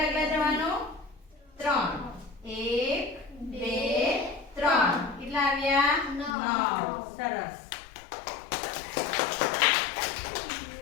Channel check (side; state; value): right; drops out; at 6.4 s